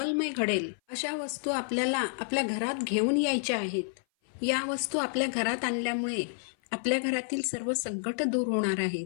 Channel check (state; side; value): silent; right; 56 dB below the other